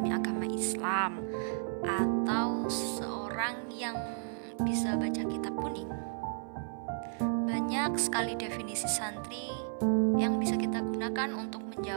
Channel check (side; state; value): left; silent; 56 dB below the other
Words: agama Islam, atau seorang yang bisa baca kitab kuning. Banyak sekali definisi santri yang bisa kita gunakan untuk